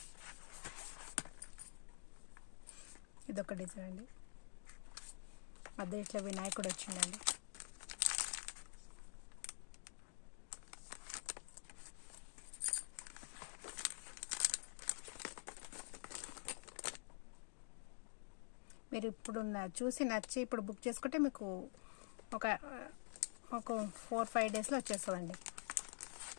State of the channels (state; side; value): silent; right; digital silence